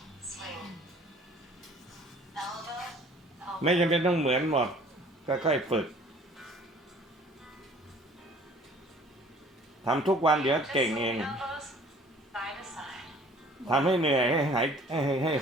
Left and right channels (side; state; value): both; normal; correlation 0.52